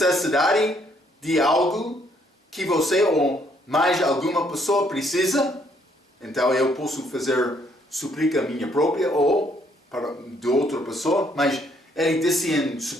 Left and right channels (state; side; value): normal; both; correlation 0.68